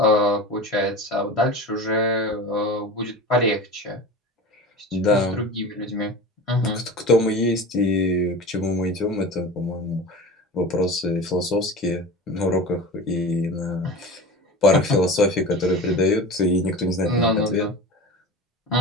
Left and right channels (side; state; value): both; normal; correlation 0.32